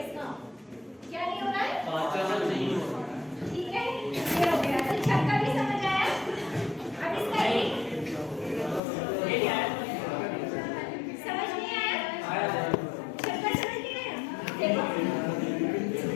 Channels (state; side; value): drops out; right; at 8.8 s